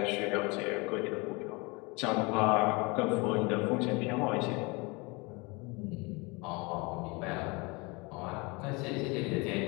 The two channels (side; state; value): right; quieter; 27.2 dB